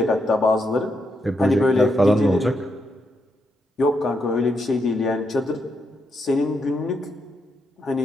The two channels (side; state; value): both; normal; correlation 0.81